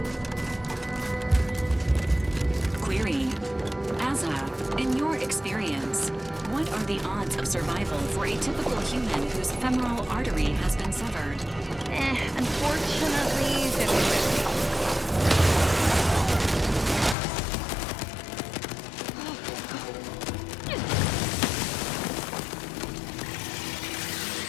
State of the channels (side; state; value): right; drops out; at 17.2 s